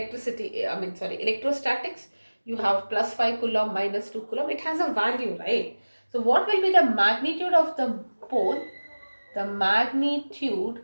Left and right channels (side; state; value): both; inverted; correlation -1.00